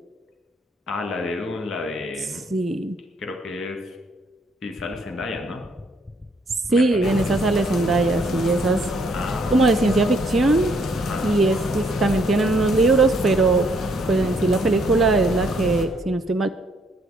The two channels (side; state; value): both; normal; correlation 0.68